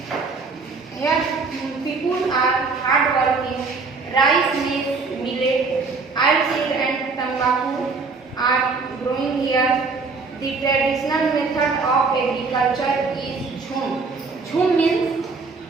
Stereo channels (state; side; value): quieter; left; 4.3 dB